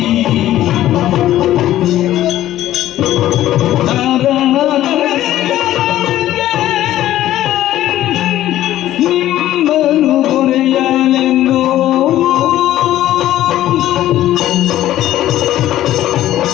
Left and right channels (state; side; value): quieter; right; 13.6 dB